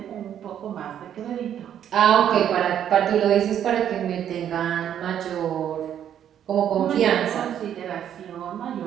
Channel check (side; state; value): left; quieter; 9.8 dB